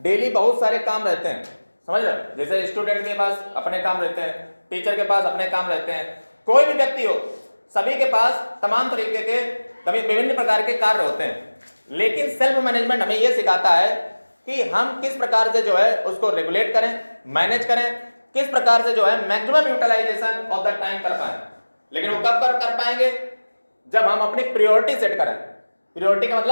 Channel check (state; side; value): inverted; both; correlation -1.00